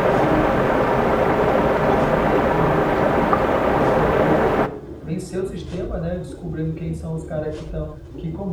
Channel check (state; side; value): identical; both; correlation 1.00